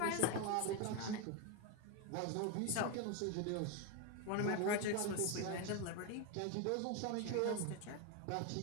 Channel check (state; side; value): different; both; correlation 0.02